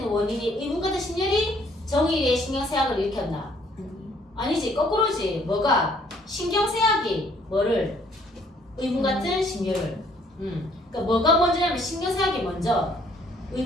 원인이 의분 같은 심열이 정일의 신경쇠약을 일으켰나? 아니지, 거꾸로지. 뭐가? 신경쇠약이 뭐를? 의분 같은 심열을. 그러니까 뭐가 먼저냐면 신경쇠약이 먼저,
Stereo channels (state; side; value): normal; both; correlation 0.63